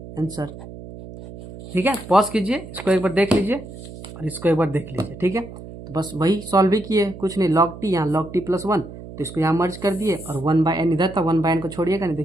answer, ठीक है। पॉज कीजिए, इसको एक बार देख लीजिए और इसको एक बार देख लीजिए, ठीक है। तो बस वही सॉल्व ही किए, कुछ नहीं, log t यहाँ log t प्लस 1, तो इसको यहाँ मर्ज कर दिए, और 1 बाई n इधर था, 1 बाई n को छोड़िएगा नहीं,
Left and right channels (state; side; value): noise; right; hum, 14 dB below the sound